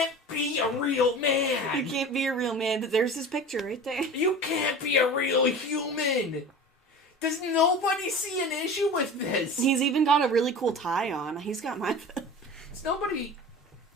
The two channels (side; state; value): both; normal; correlation 0.36